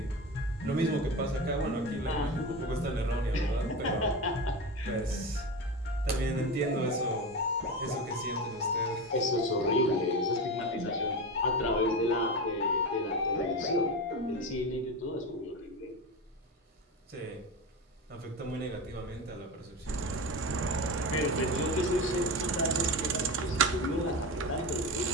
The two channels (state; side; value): normal; both; correlation 0.23